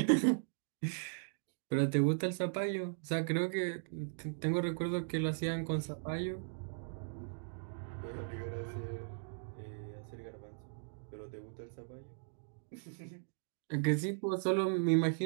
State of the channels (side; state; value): left; silent; digital silence